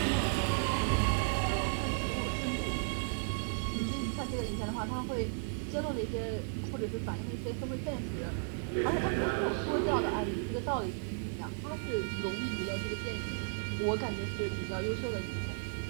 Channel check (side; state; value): left; silent; digital silence